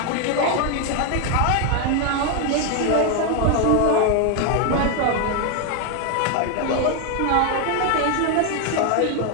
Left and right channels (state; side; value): different; both; correlation 0.01